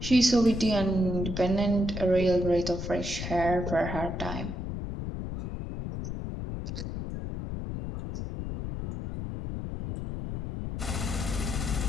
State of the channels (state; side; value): noise; left; rumble, 5 dB below the sound